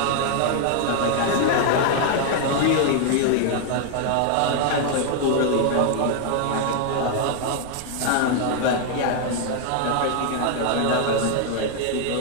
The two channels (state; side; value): different; both; correlation 0.00